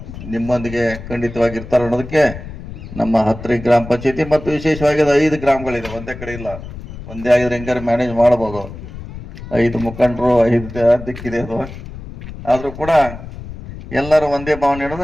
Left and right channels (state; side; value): noise; left; rumble, 12 dB below the sound